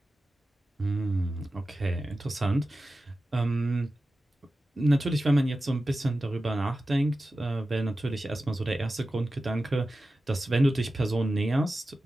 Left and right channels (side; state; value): both; normal; correlation 0.94